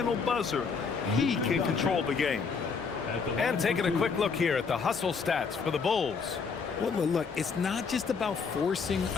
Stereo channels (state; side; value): quieter; right; 5.4 dB